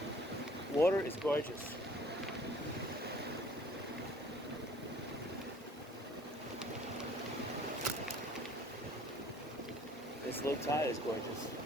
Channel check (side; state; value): both; normal; correlation 0.53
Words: Water is gorgeous. This low tide is gorgeous.